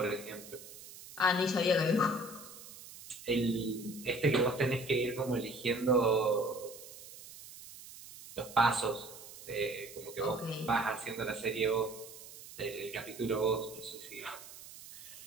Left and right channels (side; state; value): right; noise; hiss, 16 dB below the sound